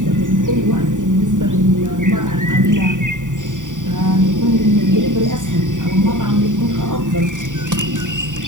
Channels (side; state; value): left; late; 0.87 ms